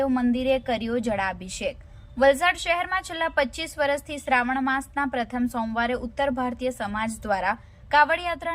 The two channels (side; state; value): both; identical; correlation 1.00